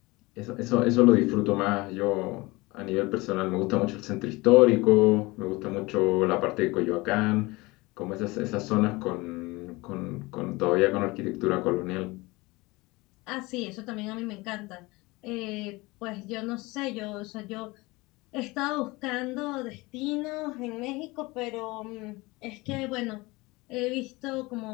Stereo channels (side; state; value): right; quieter; 22.8 dB